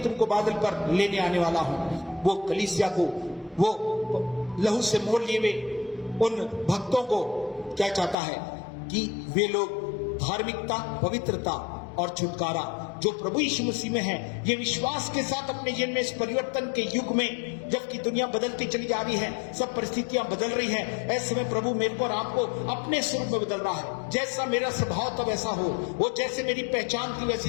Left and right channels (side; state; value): right; drops out; at 8.2 s